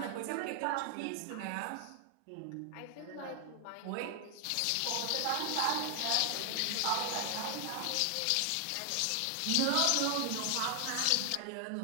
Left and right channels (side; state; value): both; different; correlation 0.00